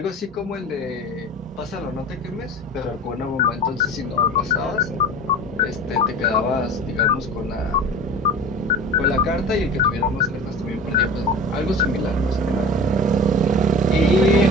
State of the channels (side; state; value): both; normal; correlation 0.36